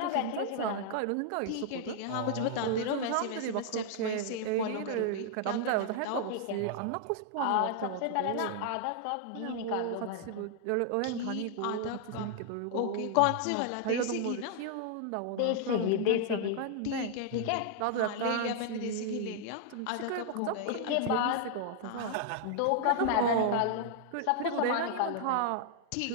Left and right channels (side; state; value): both; different; correlation -0.01